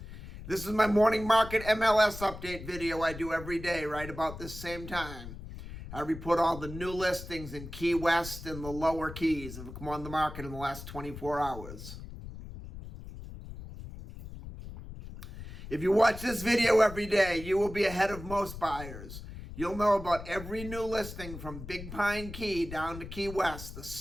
This is my morning market MLS update video I do every day right about this same time. I report all the new listings in Key West and the lower Keys that have come on the market in the last 24 hours. If you watch this video every day, you will be ahead of most buyers. You'll know about every new listing from Big Pine Key down to Key West the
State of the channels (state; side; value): noise; left; rumble, 12 dB below the sound